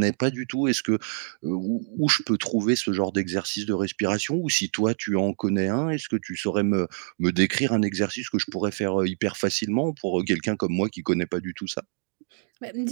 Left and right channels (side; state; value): left; silent; digital silence